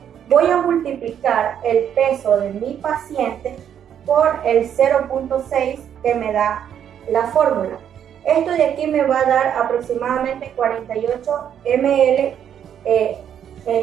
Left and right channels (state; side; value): quieter; left; 9.2 dB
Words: voy a multiplicar el peso de mi paciente por el 0.6 que me da la fórmula. Esto de aquí me va a dar aproximadamente 48 ml